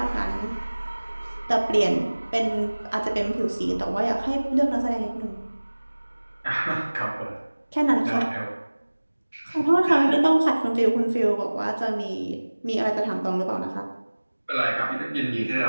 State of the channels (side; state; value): both; inverted; correlation -1.00